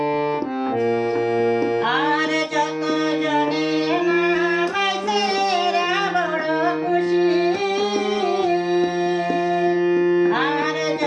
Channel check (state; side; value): identical; both; correlation 1.00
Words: আর যত জনে নামাইছে এরা বড় খুশি, আর